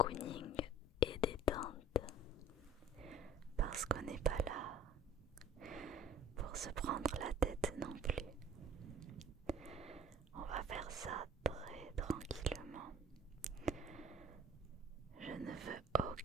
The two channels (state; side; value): normal; both; correlation 0.48